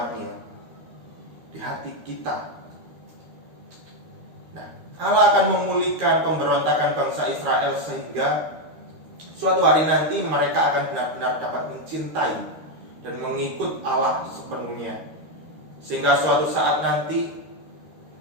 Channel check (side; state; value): left; late; 13 ms